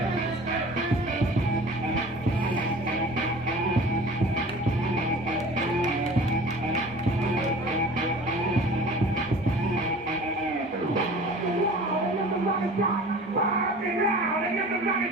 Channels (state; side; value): normal; both; correlation 0.42